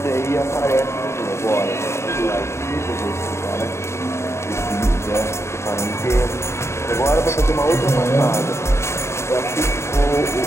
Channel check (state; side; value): late; right; 0.13 ms